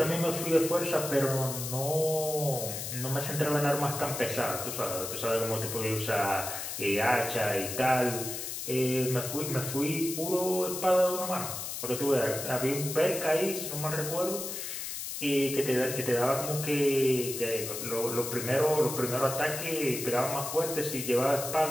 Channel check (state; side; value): noise; left; hiss, 6 dB below the sound